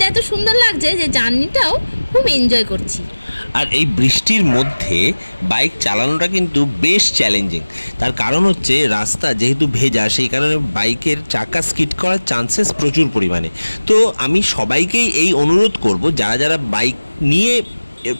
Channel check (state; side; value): inverted; both; correlation -1.00